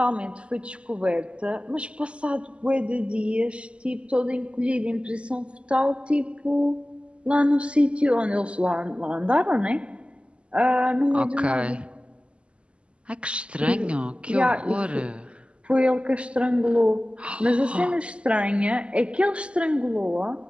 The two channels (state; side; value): late; left; 0.056 ms